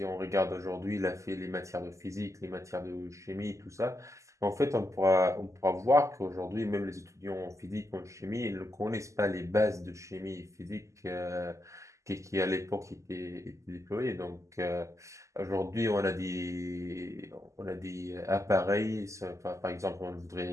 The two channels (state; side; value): late; left; 0.15 ms